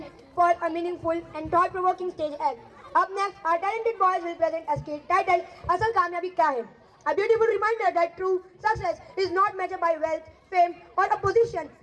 for a meaningful and thought-provoking stage act. Up next, our talented boys will present a skit titled Asal Kamyabi Kya Hai? A beautiful reminder that true success is not measured by wealth, fame or a position,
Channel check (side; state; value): both; identical; correlation 1.00